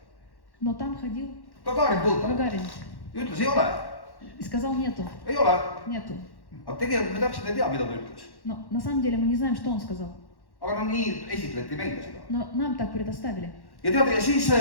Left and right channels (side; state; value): right; late; 1.1 ms